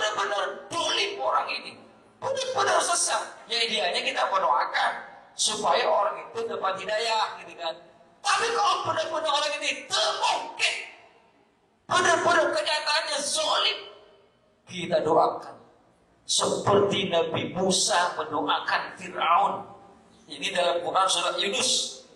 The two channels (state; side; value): identical; both; correlation 1.00